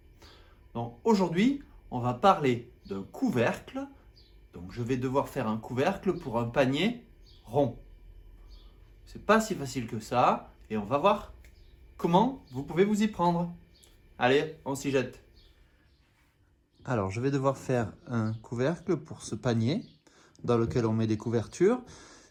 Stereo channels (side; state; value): both; identical; correlation 1.00